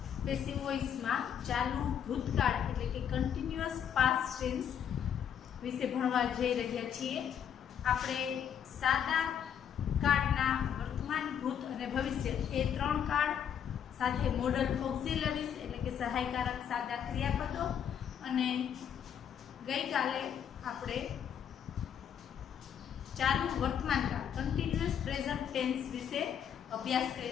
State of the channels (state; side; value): quieter; right; 8.7 dB